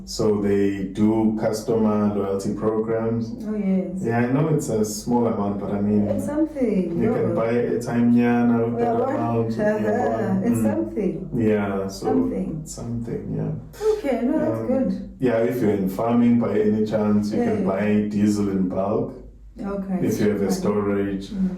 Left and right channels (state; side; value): identical; both; correlation 1.00